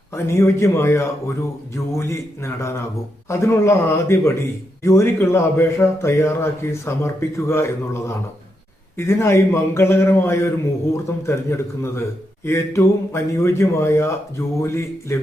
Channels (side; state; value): both; normal; correlation 0.83